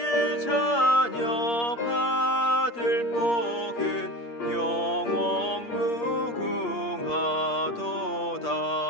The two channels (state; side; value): late; right; 8.5 ms